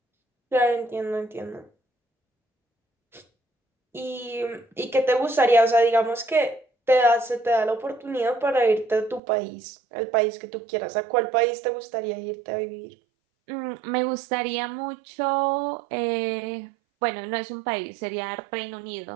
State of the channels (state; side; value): drops out; left; at 9.2 s